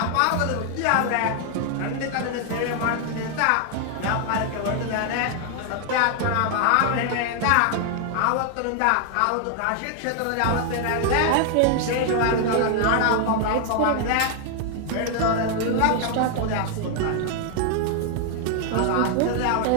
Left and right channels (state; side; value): different; both; correlation 0.00